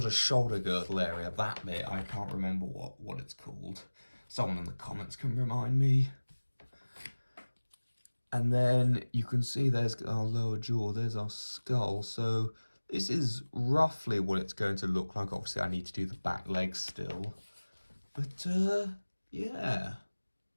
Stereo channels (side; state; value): both; inverted; correlation -1.00